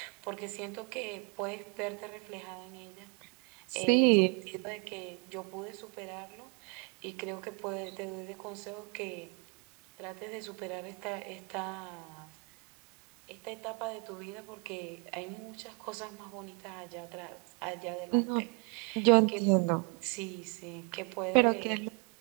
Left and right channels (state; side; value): quieter; left; 33.7 dB